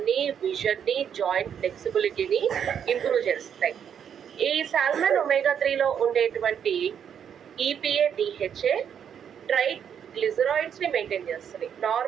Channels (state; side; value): quieter; left; 8.3 dB